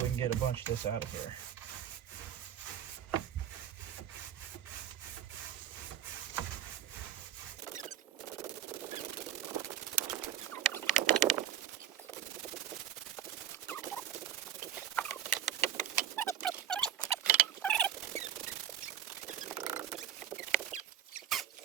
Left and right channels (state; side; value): quieter; left; 10.1 dB